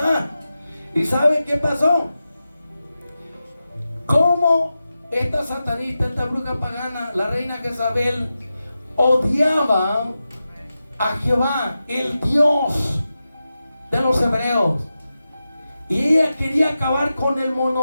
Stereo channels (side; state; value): both; inverted; correlation -0.92